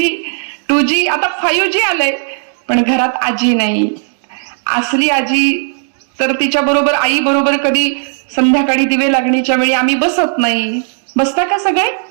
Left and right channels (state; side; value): silent; left; 58 dB below the other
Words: 2G आता 5G आलंय. पण घरात आजी नाही. असली आजी तर तिच्या बरोबर, आई बरोबर कधी संध्याकाळी दिवे लागणीच्या वेळी आम्ही बसत नाही. बसता का सगळे?